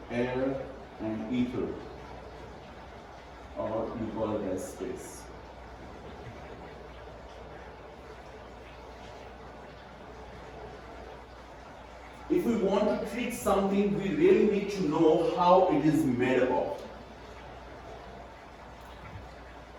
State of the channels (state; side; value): identical; both; correlation 1.00